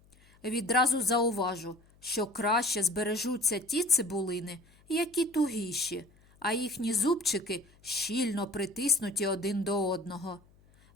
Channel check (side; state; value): left; noise; hum, 29 dB below the sound